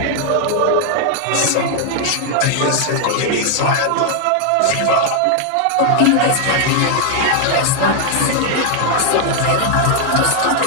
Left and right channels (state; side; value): different; both; correlation 0.00